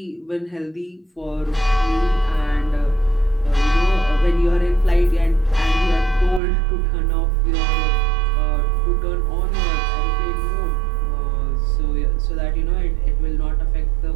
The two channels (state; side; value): drops out; left; at 6.4 s